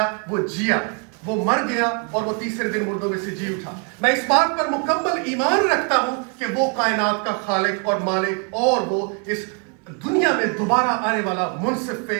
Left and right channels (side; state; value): left; quieter; 35.3 dB